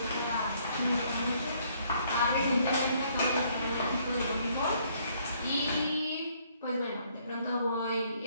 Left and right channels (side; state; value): both; inverted; correlation -0.66